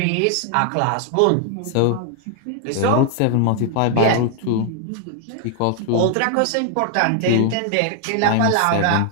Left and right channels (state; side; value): different; both; correlation 0.00